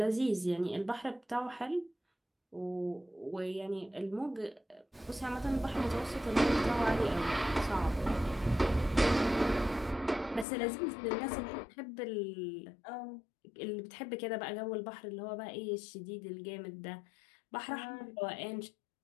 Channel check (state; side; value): drops out; right; at 10.5 s